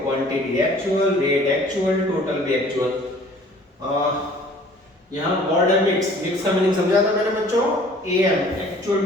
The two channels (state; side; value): normal; both; correlation 0.52